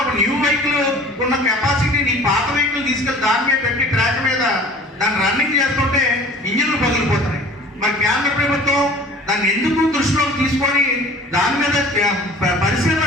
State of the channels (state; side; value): normal; both; correlation 0.45